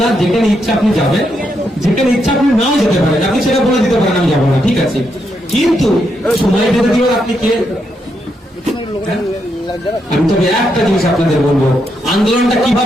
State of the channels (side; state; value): both; normal; correlation 0.80